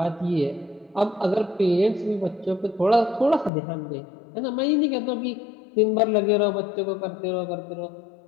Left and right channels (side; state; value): right; drops out; at 3.5 s